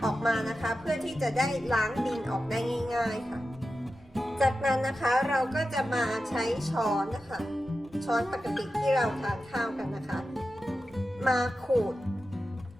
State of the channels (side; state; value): both; normal; correlation 0.92